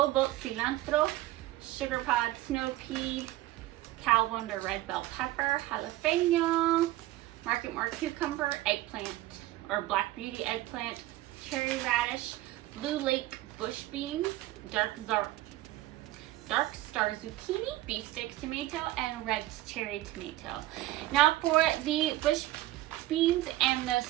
Boat Cilantro, Sugar Pod Snow Pea, Cal Wonder Red Bell Pepper, Jalapeno, Market More Cucumber, Eggplant, or Black Beauty Eggplant, Cherry Radish, Blue Lake Bush Beans, Dark Star Zucchini, Beefsteak Tomato, and Red Cherry Tomato. Now for the bush beans and the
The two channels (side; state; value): left; quieter; 16.4 dB